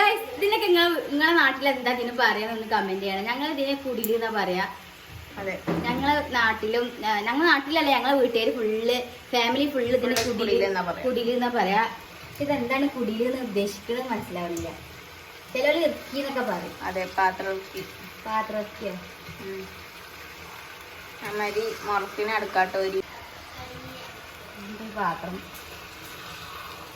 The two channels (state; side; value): identical; both; correlation 1.00